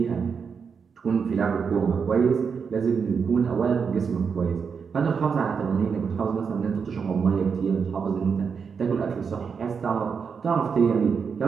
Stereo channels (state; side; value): quieter; left; 6.1 dB